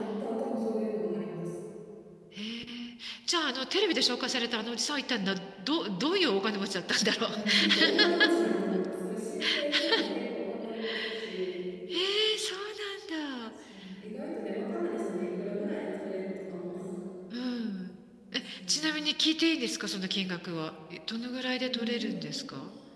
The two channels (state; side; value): identical; both; correlation 1.00